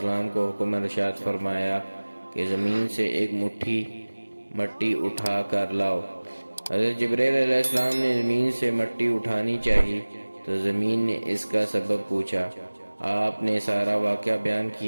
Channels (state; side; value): inverted; both; correlation -1.00